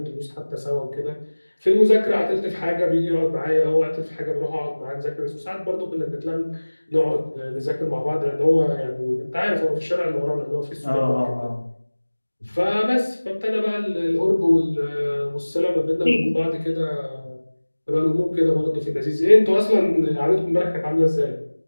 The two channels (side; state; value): both; inverted; correlation -1.00